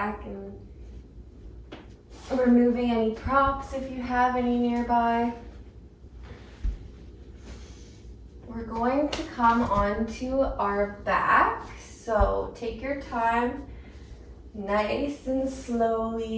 and removing any props if you have any nearby. We're going to come onto our back, so take your time, nice and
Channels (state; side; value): identical; both; correlation 1.00